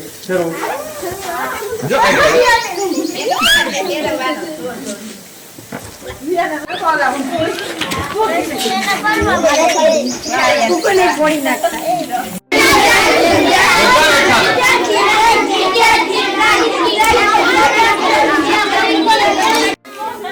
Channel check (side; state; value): both; identical; correlation 1.00